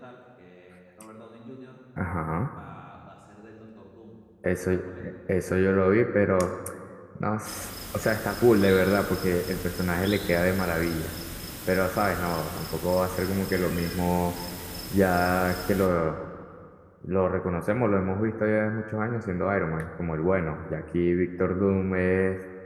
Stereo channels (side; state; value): both; identical; correlation 1.00